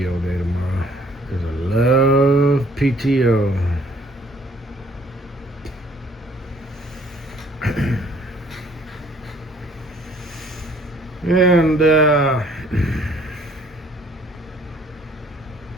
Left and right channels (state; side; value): normal; both; correlation 0.59